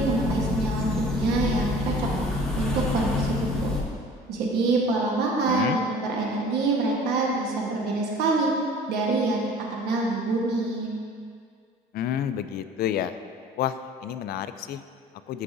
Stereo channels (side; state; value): both; normal; correlation 0.46